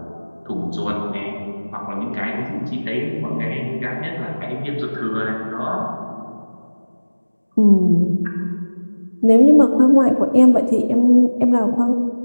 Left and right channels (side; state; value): both; inverted; correlation -1.00